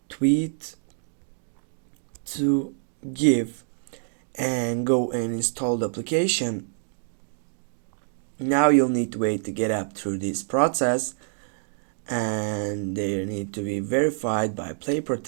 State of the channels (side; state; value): left; silent; digital silence